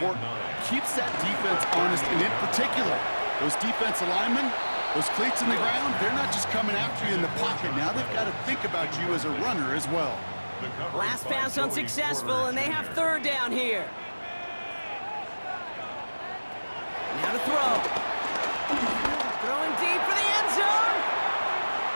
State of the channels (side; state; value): both; inverted; correlation -1.00